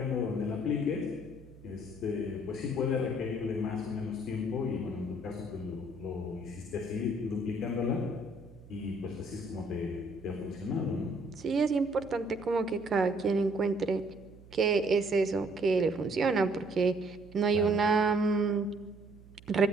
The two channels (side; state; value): right; noise; hum, 21 dB below the sound